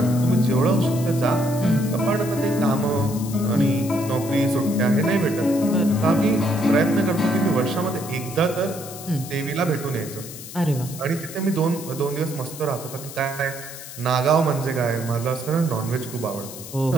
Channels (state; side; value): noise; left; hiss, 13 dB below the sound